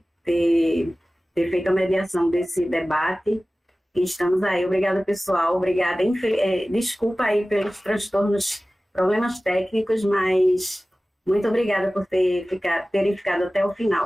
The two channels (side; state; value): both; normal; correlation 0.97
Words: ter feito a mediação desse debate. E estamos aí. Obrigada, pessoal. Obrigada. Desculpa aí pelos transtornos, problemas técnicos, mas muito obrigada por terem ficado até o